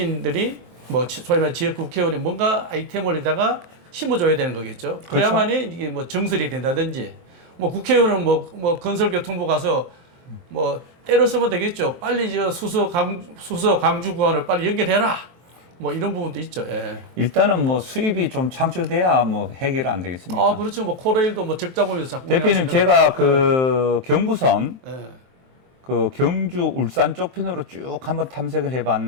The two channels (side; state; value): left; late; 23 ms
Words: 뭐 소위 말해 지역 국회의원이 뭔가 아이템을 에다가 심어줘야 되는 거겠죠. 그래야만이 이게 뭐 정설이 된다든지 뭐 국회의원은 뭐 건설교통부 가서 뭐 때려 쓰면 되겠죠. 빨리 저 수서 강주 구간을 빨리 연결해라. 뭐 이런 부분도 있죠. 예. 일단은 뭐 수입이 좀 창출돼야 뭐 해결 안 되겠습니까? 그렇죠. 뭐 코레일도 뭐 적자 보면서 자꾸 대표님 제가 그 경부선 예. 그 경주 울산 쪽 편으로 쭉 한번 탐색을